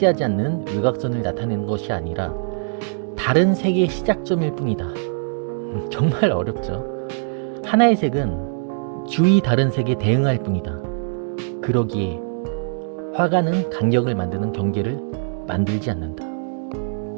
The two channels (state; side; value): silent; left; digital silence